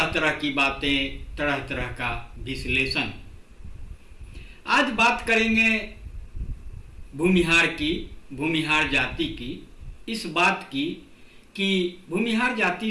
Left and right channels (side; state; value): both; identical; correlation 1.00